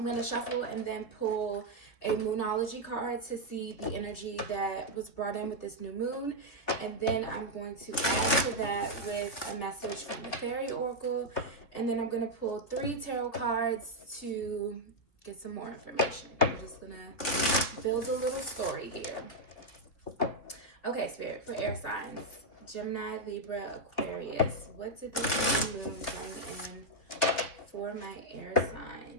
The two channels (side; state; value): right; late; 3.2 ms